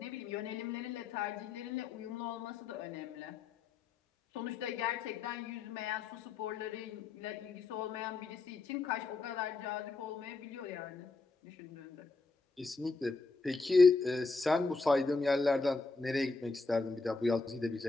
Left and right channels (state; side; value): quieter; right; 3.9 dB